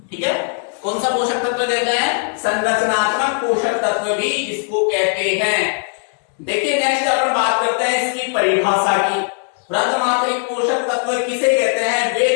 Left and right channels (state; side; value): silent; right; 55 dB below the other